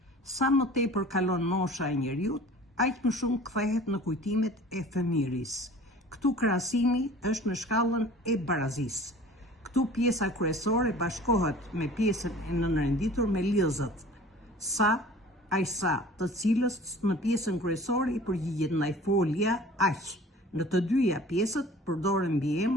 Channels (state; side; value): normal; both; correlation 0.45